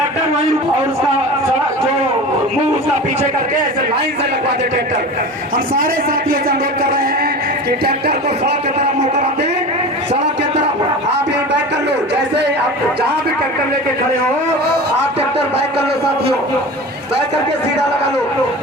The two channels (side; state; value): both; normal; correlation 0.33